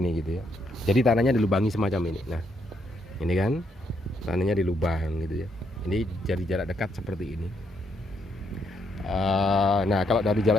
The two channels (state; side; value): normal; both; correlation 0.75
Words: gitu ya. Jadi tanahnya dilubangi semacam ini. Nah, ini kan tanahnya dilubang gitu ya. Ini dari jarak dekat seperti ini. Nah, kalau dari